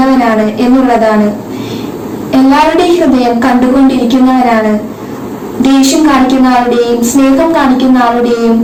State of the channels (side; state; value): both; identical; correlation 1.00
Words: എന്നുള്ളതാണ്. എല്ലാവരുടെയും ഹൃദയം കണ്ടുകൊണ്ടിരിക്കുന്നവനാണ്. ദേഷ്യം കാണിക്കുന്ന ആളുടെയും, സ്നേഹം കാണിക്കുന്ന ആളുടെയും,